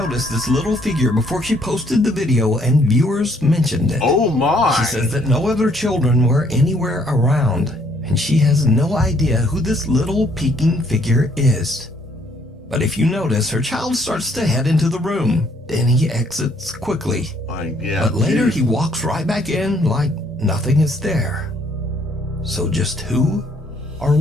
this little figure before she posted the video and viewers mentioned it. Oh my! She says that no other children were anywhere around, and she has no idea who this little peeking figure is. But if you notice, her child starts to head into the room, then he exits quickly. But later he walks right back in like nothing is there. So just who or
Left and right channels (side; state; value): both; normal; correlation 0.66